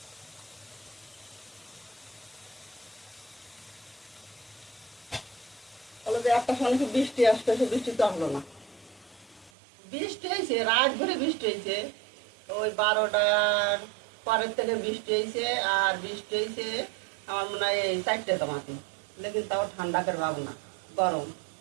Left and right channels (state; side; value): drops out; left; at 9.5 s